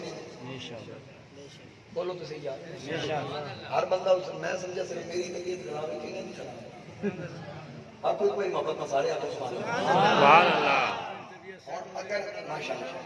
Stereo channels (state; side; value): identical; both; correlation 1.00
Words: بولو تو صحیح یار ہر بندہ حسین میں سمجھا صرف میری طبیعت خراب ہے کہ نہیں خراب آپ کوئی محبت نہ سارے آپ سبحان اللہ اور اگر